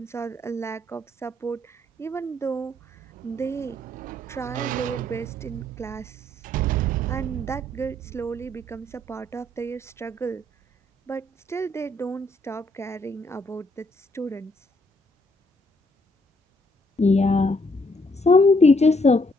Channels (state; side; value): normal; both; correlation 0.70